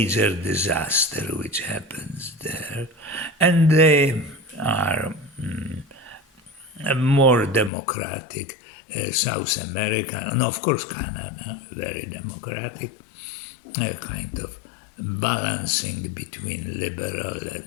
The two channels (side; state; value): right; drops out; at 7.7 s